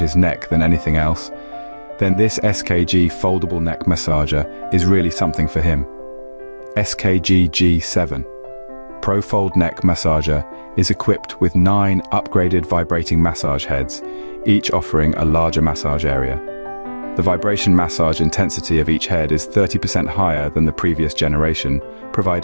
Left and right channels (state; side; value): inverted; both; correlation -1.00